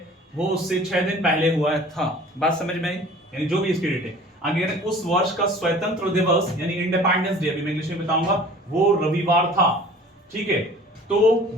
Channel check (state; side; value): normal; both; correlation 0.46